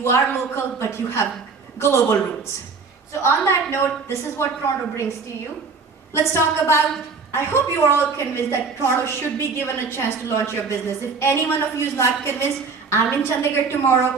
are local, but you have global roots. So on that note, this is what Toronto brings to you. Let's talk about, I hope you are all convinced that Toronto should be given a chance to launch your business. If any one of you is not convinced, I'm in Chandigarh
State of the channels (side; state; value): left; quieter; 4.8 dB